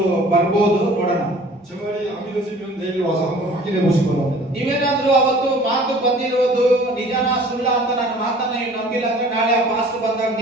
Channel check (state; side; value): normal; both; correlation 0.49